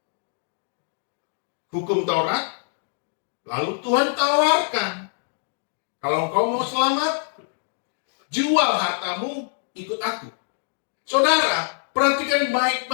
hukum Taurat, lalu Tuhan tawarkan, kalau engkau mau selamat, jual hartamu, ikut aku. Saudara, perhatikan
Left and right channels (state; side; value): silent; right; digital silence